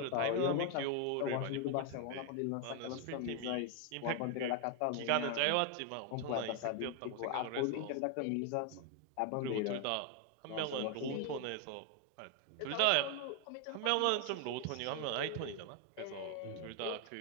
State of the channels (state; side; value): different; both; correlation 0.00